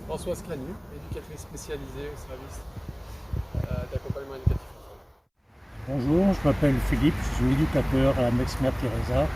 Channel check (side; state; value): both; identical; correlation 1.00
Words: Françoise Clanu, éducatrice spécialisée au service d'accompagnement éducatif. Bonjour, je m'appelle Philippe, je suis éducateur à Mexmer Teresa